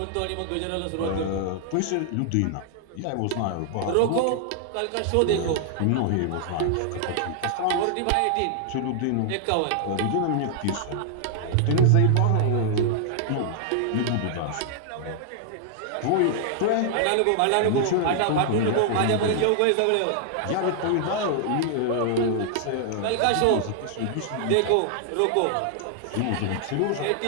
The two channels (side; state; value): both; different; correlation -0.01